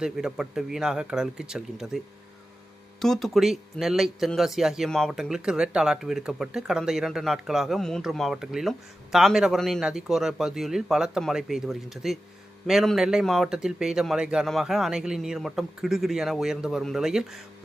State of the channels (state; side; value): normal; both; correlation 0.93